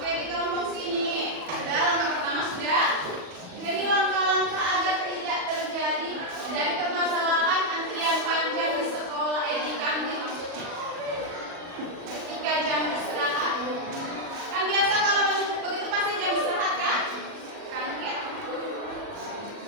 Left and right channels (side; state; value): left; late; 40 ms